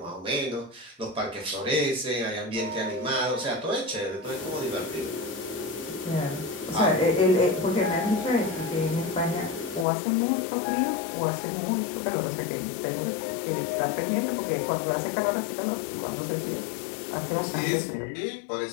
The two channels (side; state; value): right; drops out; at 9.9 s